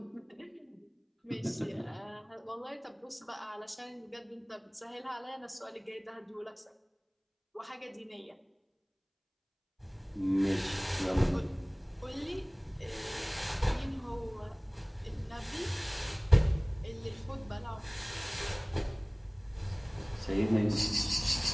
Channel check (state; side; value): identical; both; correlation 1.00